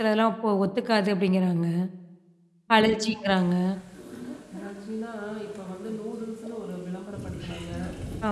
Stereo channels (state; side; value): identical; both; correlation 1.00